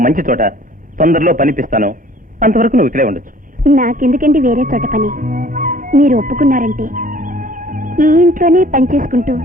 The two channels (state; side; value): normal; both; correlation 0.53